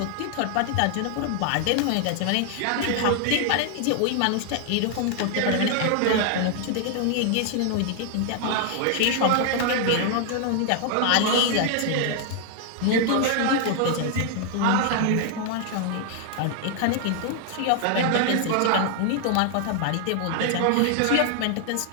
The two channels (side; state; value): both; different; correlation 0.00